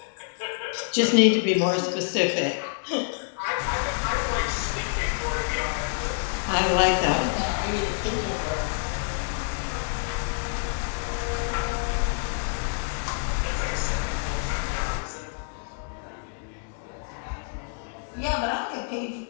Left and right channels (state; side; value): silent; right; digital silence